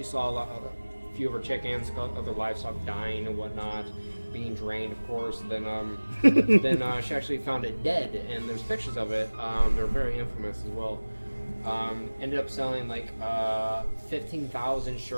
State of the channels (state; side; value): inverted; both; correlation -1.00